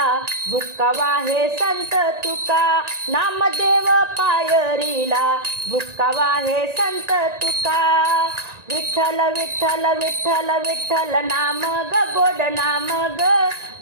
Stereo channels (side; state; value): left; late; 1.9 ms